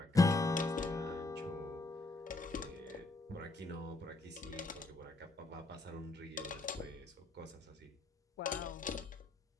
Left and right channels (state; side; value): quieter; right; 3.1 dB